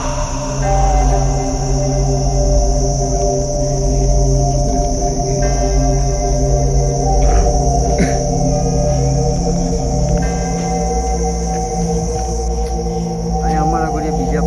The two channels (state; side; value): identical; both; correlation 1.00